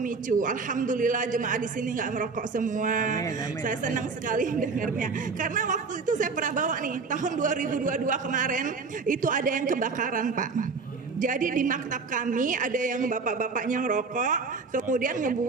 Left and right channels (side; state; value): left; quieter; 4.6 dB